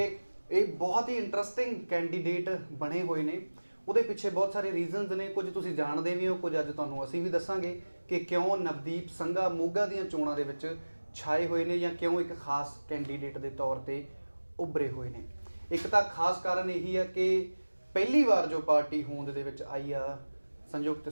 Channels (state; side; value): inverted; both; correlation -1.00